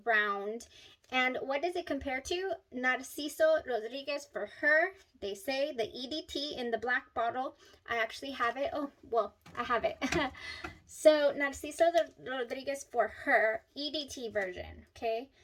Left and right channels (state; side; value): identical; both; correlation 1.00